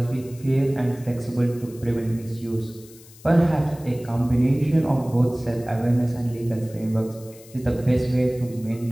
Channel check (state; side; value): noise; left; hiss, 22 dB below the sound